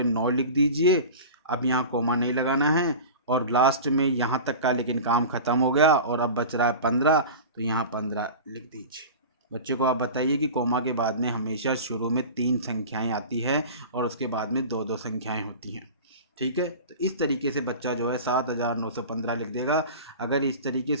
9 लिख दीजिए। अब यहाँ कोमा नहीं लगाना है, और लास्ट में यहाँ तक का लेकिन काम ख़त्म हो गया और अब बच रहा है 15, तो यहाँ 15 लिख दीजिए। बच्चे को आप बताइए कि कोमा के बाद में हमेशा शुरू में 3 संख्याएं आती है और उसके बाद में 2-2 संख्याएं होती हैं। ठीक है, तो इस तरीके से बच्चा जो है 7915 लिख देगा। अगर इस तरीके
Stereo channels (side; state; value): both; inverted; correlation -0.33